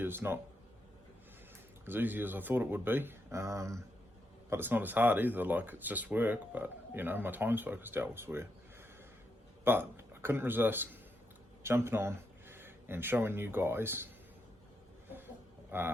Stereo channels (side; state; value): both; normal; correlation 0.82